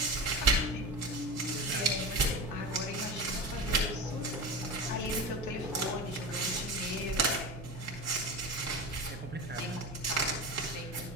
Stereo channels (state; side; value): normal; both; correlation 0.26